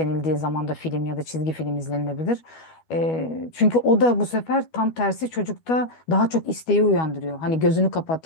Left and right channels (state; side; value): late; right; 12 ms